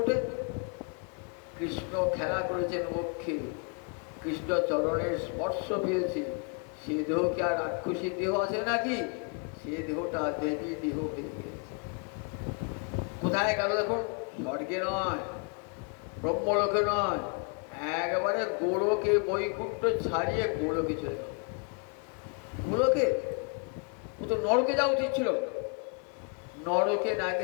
কৃষ্ণ খেলা করেছেন বক্ষে, কৃষ্ণ চরণের স্পর্শ পেয়েছে। সে দেহ কি আর রাক্ষসীর দেহ আছে নাকি? সে দেহটা দেবী দেহ হয়ে গিয়েছে। কোথায় গেল দেখুন? স্বর্গে নয়, ব্রহ্মলোকে নয়, একবারে গোলকে বৈকুণ্ঠ ছাড়িয়ে গোলকে চলে গেল। গোলকে ও তো নরকে যাওয়া উচিত ছিল। নরকে না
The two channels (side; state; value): right; quieter; 37.4 dB